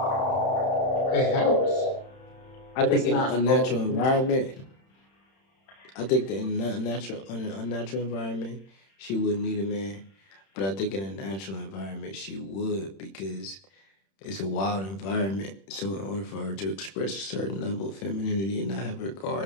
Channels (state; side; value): late; right; 31 ms